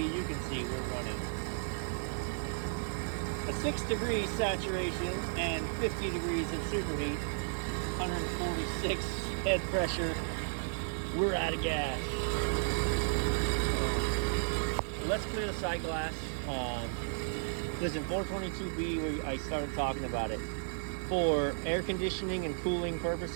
you can see we're running a 6 degrees saturation and 50 degrees of superheat, 146 head pressure. We're out of gas. let's clear the side glass. Listen, 422B, I started talking about it. For air conditioning and cooling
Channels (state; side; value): silent; left; digital silence